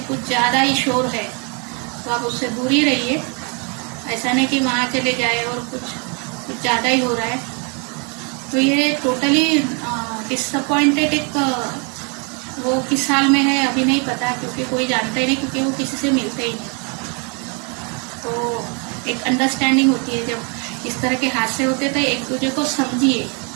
कुछ ज़्यादा ही शोर है तो आप उससे दूर ही रहिए। ऐसा नहीं कि वहाँ चले जाए और कुछ ज़्यादा ही हो रहा है। तो ये टोटली डिसअपॉइंटेड एक वो किस साल में है अभी नहीं पता, क्योंकि कोई जानता ही नहीं, क्योंकि वो किसी से मिलते ही नहीं। तो एक अंडरस्टैंडिंग होती है जब इस तरह के हादसे होते तो एक दूसरे को समझिए।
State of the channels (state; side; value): quieter; left; 35.6 dB